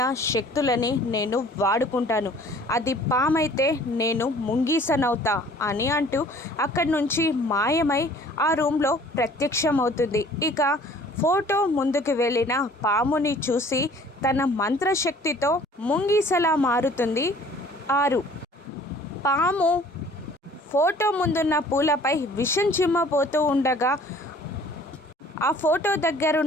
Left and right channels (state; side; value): normal; both; correlation 0.52